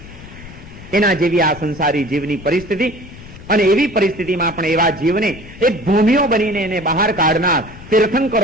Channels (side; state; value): left; noise; rumble, 17 dB below the sound